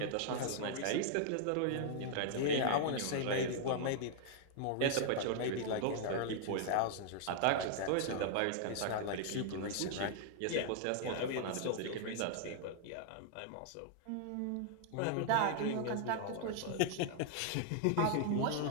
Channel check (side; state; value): both; different; correlation -0.01